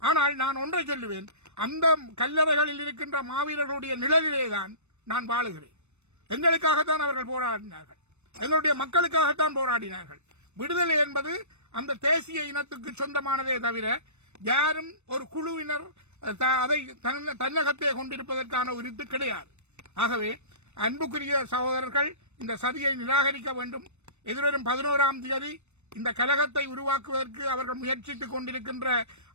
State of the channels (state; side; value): late; left; 0.82 ms